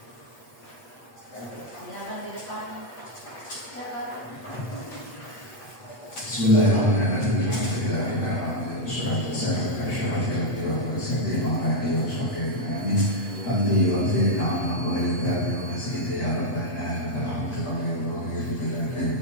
Bismillahirrahmanirrahim. Alhamdulillah, wassalatu wassalamu ala asyrafil anbiya'i wal mursalin wa ala alihi wa sahbihi ajma'in. Hamdi wa khairin amma wa ilkabi wa masjidi ya rabbana alhamdulillah wa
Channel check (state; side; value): late; right; 8.3 ms